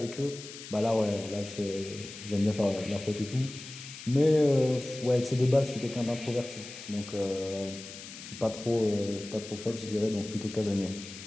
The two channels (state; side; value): noise; left; hiss, 13 dB below the sound